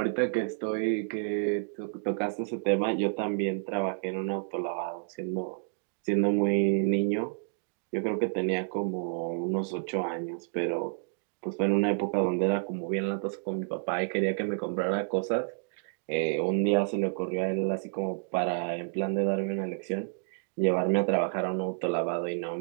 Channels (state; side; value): silent; left; digital silence